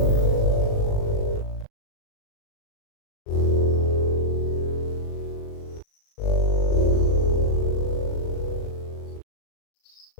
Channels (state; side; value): late; right; 38 ms